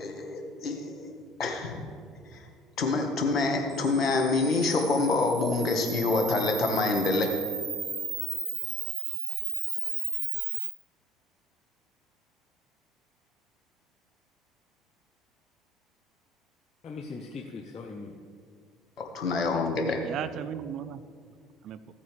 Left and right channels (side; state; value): both; normal; correlation 0.51